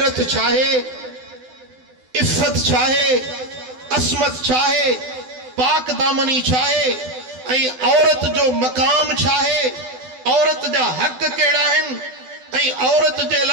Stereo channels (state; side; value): late; left; 12 ms